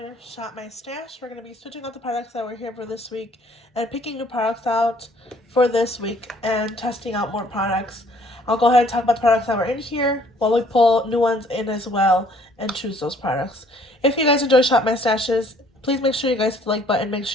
Shop My Stash. We're going to be switching out the products that were here for this week and picking new products out for this week and testing out more products. I'll go ahead and talk about the products that were in here while we pull new ones in as well and choose those products. If you guys enjoy Shop My Stashes, please make sure you guys hit the like button, make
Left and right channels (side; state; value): both; normal; correlation 0.60